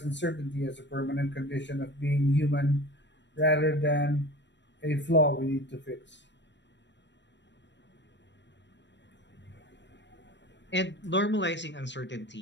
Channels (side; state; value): right; late; 0.52 ms